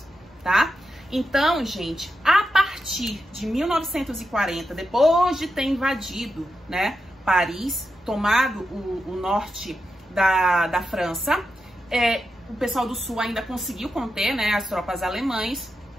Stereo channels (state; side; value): normal; both; correlation 0.88